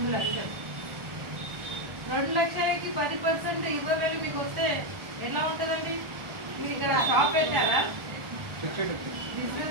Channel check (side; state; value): left; late; 1.4 ms